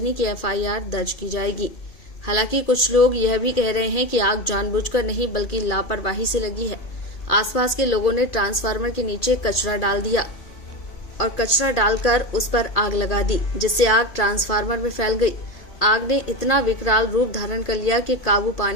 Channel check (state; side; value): late; right; 2.4 ms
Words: की एफआईआर दर्ज की जाएगी। हालांकि कुछ लोग यह भी कह रहे हैं कि आग जानबूझकर नहीं बल्कि लापरवाही से लगी है। आसपास के लोगों ने ट्रांसफार्मर के नीचे कचरा डाल दिया और कचरा डालकर उस पर आग लगा दी, जिससे आग ट्रांसफार्मर में फैल गई। आग ने इतना विकराल रूप धारण कर लिया कि काबू